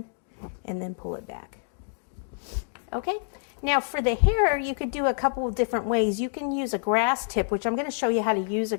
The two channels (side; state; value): right; silent; digital silence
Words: and then pull it back. Okay, now for the hair, you could do a couple of different ways. You can use a grass tip, which I'm going to show you how to use a